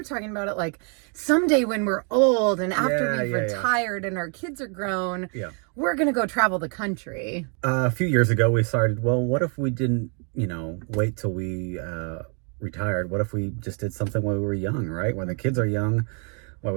talking about it like someday when we're old and after we've retired and our kids are grown, we're going to go travel the country. A few years ago, we started, well, what if we didn't, wait till we retired? What if we just did something when we were young, right? When the kids are young, while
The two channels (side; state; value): left; quieter; 38.8 dB